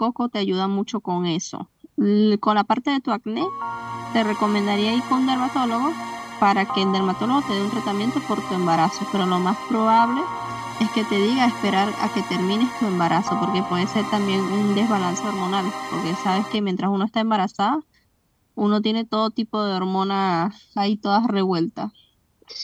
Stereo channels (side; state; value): both; identical; correlation 1.00